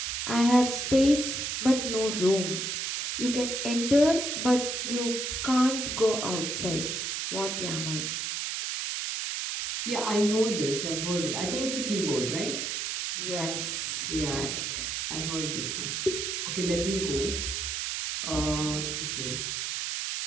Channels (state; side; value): noise; right; hiss, 2 dB below the sound